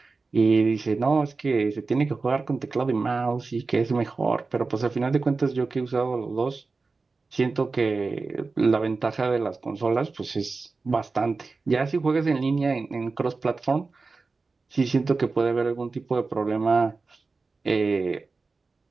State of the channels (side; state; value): left; quieter; 4.0 dB